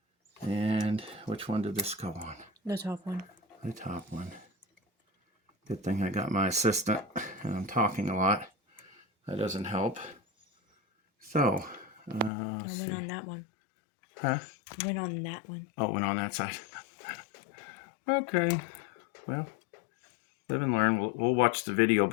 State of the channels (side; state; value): right; drops out; at 12.3 s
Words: And which one did this go on? The top one. The top one. Good thing I got my assistant, and I'm talking a lot. That doesn't help. So, I went on that one. Huh? I went on that one. Oh, it went on that side. Okay. Well, live and learn. We'll watch the video